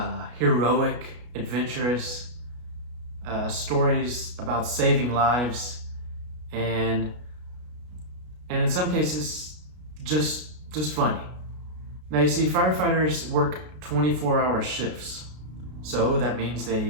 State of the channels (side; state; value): left; late; 33 ms